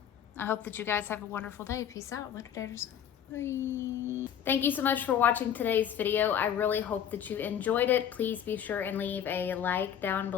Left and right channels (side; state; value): right; quieter; 9.2 dB